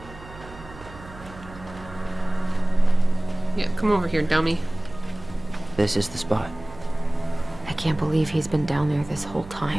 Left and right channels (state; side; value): noise; right; hum, 17 dB below the sound